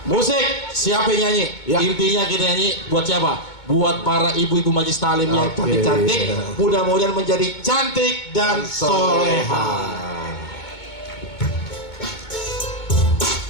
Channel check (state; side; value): late; right; 2.2 ms